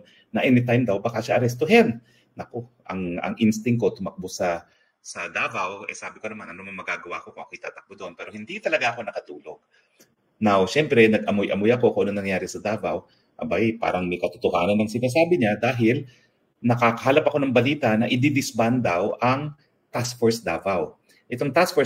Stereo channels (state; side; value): identical; both; correlation 1.00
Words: na anytime daw baka siya arestuhin. Naku, ang instinct ko tumakbo sa Davao, sabi ko naman, ano man magagawa ko kung ako itatakbo doon. Pero hindi talaga ako nakatulog. Now, syempre, nag-amoy-amoy ako kung ano nangyari sa Davao. Abay, parang may katotohanan ng sinasabi niya dahil nakakahalap ako ng balita na i-disband daw ang Task Force Davao. Itong Task